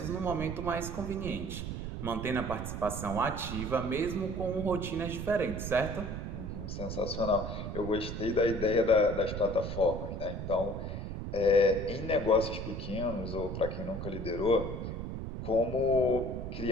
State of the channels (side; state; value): right; noise; rumble, 5 dB below the sound